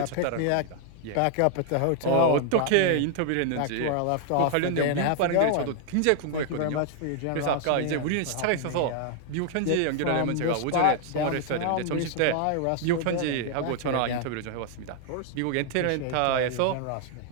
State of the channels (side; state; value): both; different; correlation 0.00